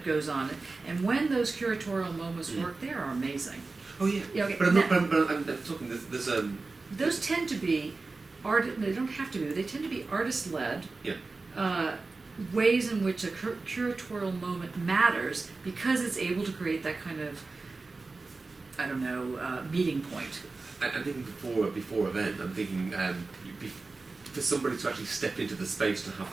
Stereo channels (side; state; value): left; quieter; 3.7 dB